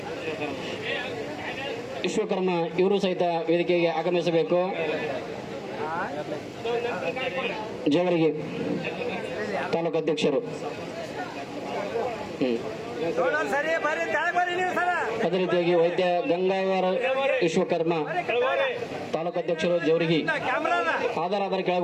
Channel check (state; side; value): identical; both; correlation 1.00